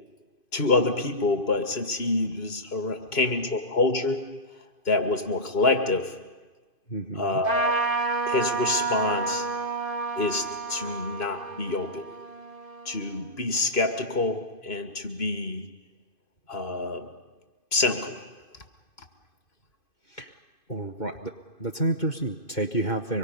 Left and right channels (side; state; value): right; late; 2.5 ms